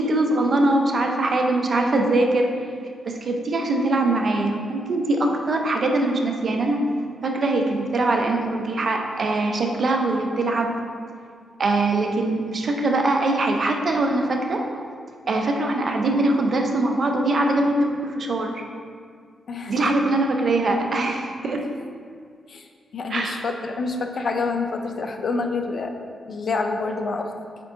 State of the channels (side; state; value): both; normal; correlation 0.77